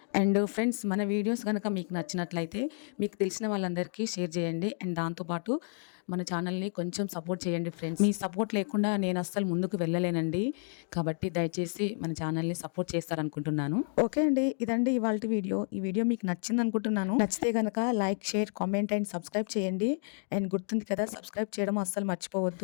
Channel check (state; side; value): silent; right; 57 dB below the other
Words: అండ్ ఫ్రెండ్స్, మన వీడియోస్ కనుక మీకు నచ్చినట్లయితే మీకు తెలిసిన వాళ్ళందరికీ షేర్ చేయండి. అండ్ దాంతోపాటు మన ఛానల్ని కొంచెం సపోర్ట్ చేయండి ఫ్రెండ్స్. మీ సపోర్ట్ లేకుండా నేను అస్సలు ముందుకు వెళ్ళలేనండి. కాబట్టి దయచేసి మన ఛానల్ని సపోర్ట్ చేస్తారనుకుంటున్నాను. ఓకే అండి, ఇదండి ఇవాళ వీడియో. ఈ వీడియో మీకు నచ్చింది అనుకుంటున్నాను. నచ్చితే కనుక like, share, comment and subscribe చేయండి. అండ్ గుర్తుంది కదా, సబ్స్క్రైబ్ చేయడం అస్సలు